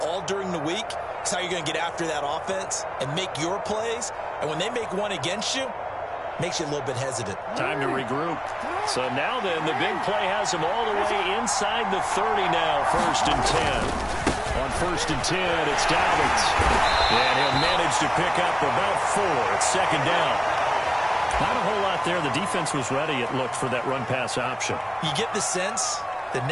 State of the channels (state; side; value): identical; both; correlation 1.00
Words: all during the week is how you're going to get after that offense and make your plays. And when they make one against you, makes you a little bit hesitant. Time to regroup. So now then, the big play has him all the way inside the 30 now, 1st and 10. On 1st and 10, it's Dobbins. And he'll manage to pick up about 4. It's 2nd down. Not a whole lot there. The defense was ready, it looked, for that run-pass option. You get the sense that